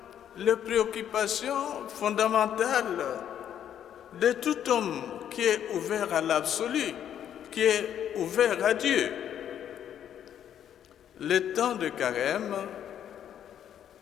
les préoccupations fondamentales de tout homme qui est ouvert à l'absolu, qui est ouvert à Dieu. Le temps de Carême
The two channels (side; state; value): right; quieter; 9.8 dB